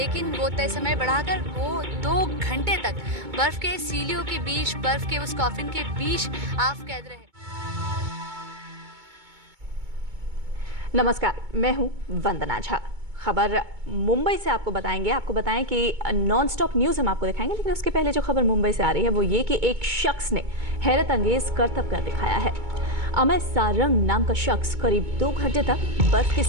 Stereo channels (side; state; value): left; late; 2.2 ms